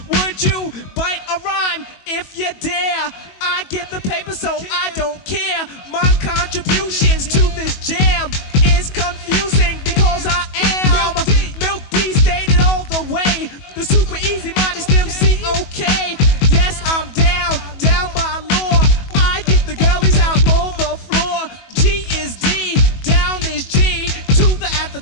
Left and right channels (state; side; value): late; right; 22 ms